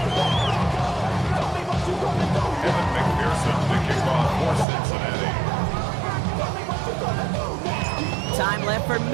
Time left for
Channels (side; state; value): left; drops out; at 4.7 s